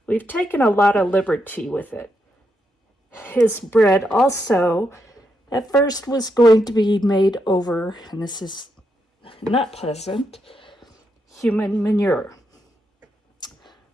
we've taken a lot of liberty with it. His bread also, at first, was going to be made over, and this is not pleasant, human manure.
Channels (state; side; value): normal; both; correlation 0.81